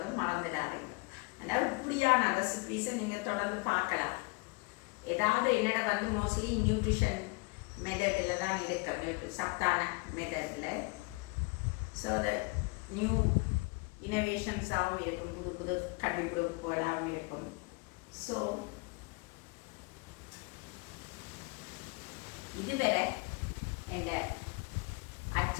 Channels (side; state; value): right; quieter; 29.3 dB